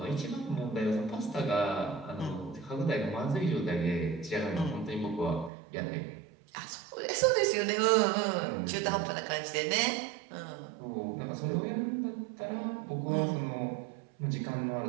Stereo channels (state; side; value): drops out; left; at 5.5 s